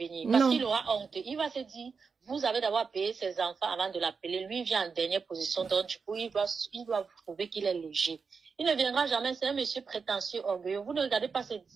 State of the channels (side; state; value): left; quieter; 5.3 dB